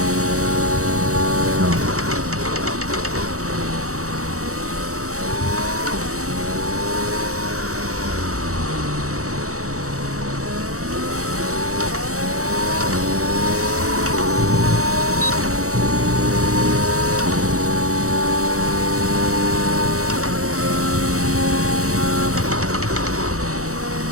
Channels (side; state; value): left; late; 0.65 ms